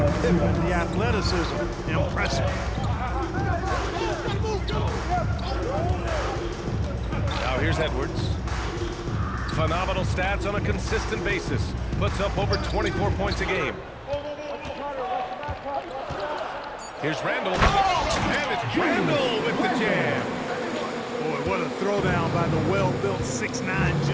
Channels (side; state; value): both; identical; correlation 1.00